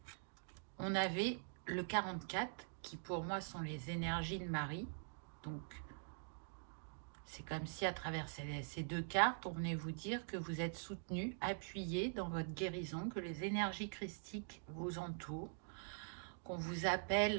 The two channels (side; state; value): left; silent; digital silence